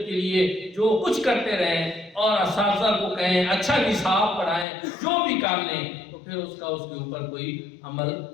کے لیے جو کچھ کرتے رہیں اور اساتذہ کو کہیں اچھا نصاب پڑھائیں، جو بھی کر لیں، تو پھر اس کا اس کے اوپر کوئی عمل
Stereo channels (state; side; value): drops out; right; at 4.7 s